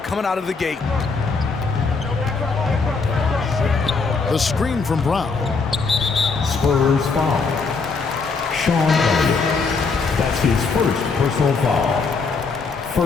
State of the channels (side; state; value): right; quieter; 4.6 dB